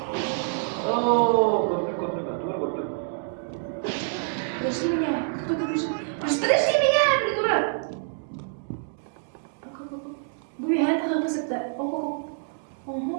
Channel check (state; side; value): silent; left; digital silence